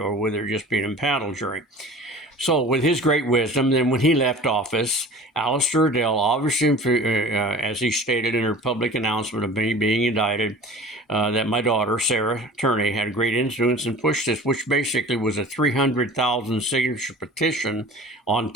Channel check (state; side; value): normal; both; correlation 0.41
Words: whether it just be an impaneled jury. So with his great wisdom, then when he left office, Alistair Adele, obviously, as he stated in her public announcement of me being indicted, that my daughter, Sarah Turney, had great influence and pushed this, which basically was a 300,000 signature petition on